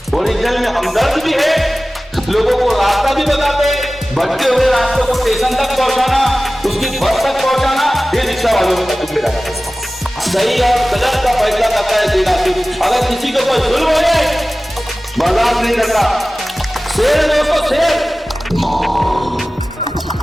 ओरिजिनल में हमदर्द भी है, लोगों को रास्ता भी बताते हैं, भटके हुए रास्तों को स्टेशन तक पहुंचाना, उसकी बस तक पहुंचाना, ये रिक्शा वालों का जिम्मेदारी है। सही और गलत का फैसला करता है जिला। अगर किसी को कोई जुल्म हो जाए बर्दाश्त नहीं करता। शेर दोस्तों, शेर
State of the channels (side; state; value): both; normal; correlation 0.97